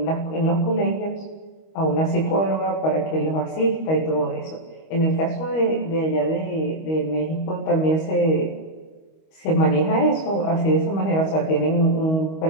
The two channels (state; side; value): late; right; 25 ms